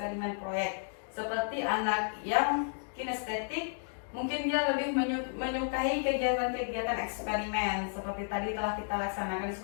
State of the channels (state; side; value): silent; right; digital silence